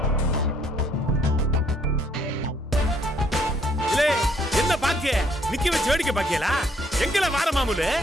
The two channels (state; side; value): normal; both; correlation 0.67